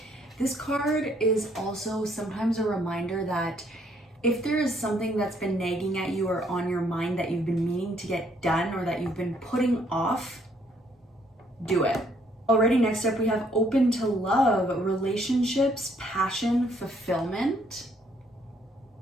This card is also sometimes a reminder that if there is something that's been nagging at you or on your mind that you've been meaning to get done or that you've been putting off, do it. Alrighty, next up we have open to love, relationships, passion, fulfillment,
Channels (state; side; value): normal; both; correlation 0.67